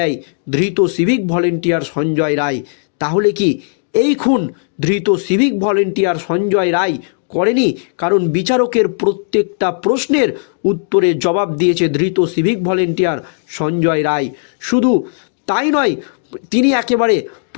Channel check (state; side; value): silent; right; digital silence